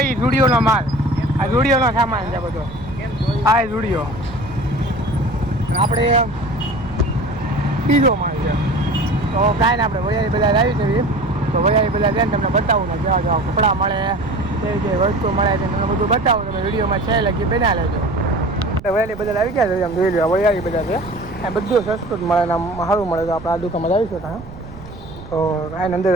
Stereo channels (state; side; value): noise; right; rumble, 15 dB below the sound